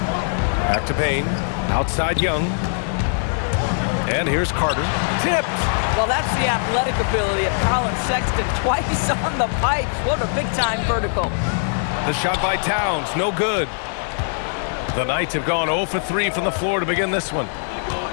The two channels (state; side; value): silent; right; digital silence